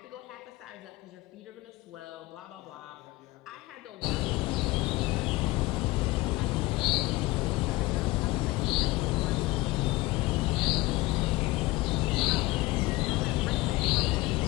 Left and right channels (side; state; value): right; quieter; 20.4 dB